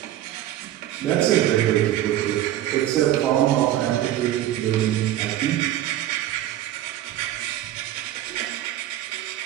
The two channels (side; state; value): left; quieter; 13.2 dB